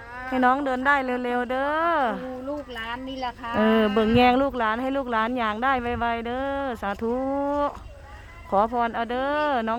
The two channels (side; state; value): both; identical; correlation 1.00